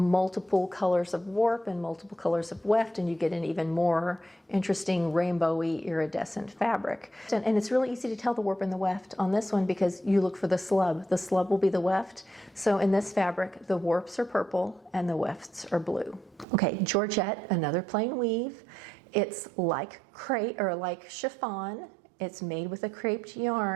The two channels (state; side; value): drops out; left; at 16.4 s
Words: colors of warp and multiple colors of weft, and you get an even more interesting rainbowy iridescent fabric. And it's really easy to tell the warp and the weft on this one because you look for the slub. The slub will be the weft. So in this fabric, the warps are purple and the wefts are blue. Okay, Georgette, another plain weave. It's like crepe or like chiffon. It's made with a creped